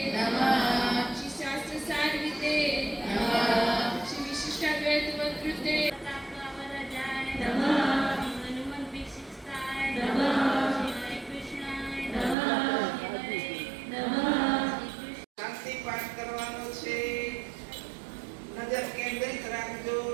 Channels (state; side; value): drops out; left; at 12.4 s